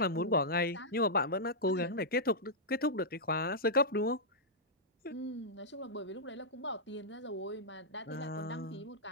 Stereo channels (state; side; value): normal; both; correlation -0.09